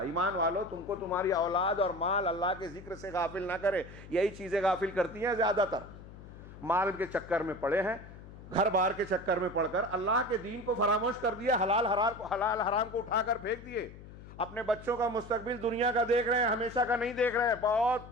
ایمان والو تم کو تمہاری اولاد اور مال اللہ کے ذکر سے غافل نہ کرے۔ یہی چیزیں غافل کرتی ہیں زیادہ تر، مال کے چکر میں پڑے ہیں، گھر بار کے چکر میں پڑ کر اللہ کے دین کو فراموش کر دیا، حلال حرام کو اٹھا کر پھینک دیے، اپنے بچوں کا مستقبل دنیا کا دیکھ رہے ہیں، ہمیشہ کا نہیں دیکھ رہے ہیں،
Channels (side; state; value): left; noise; hum, 16 dB below the sound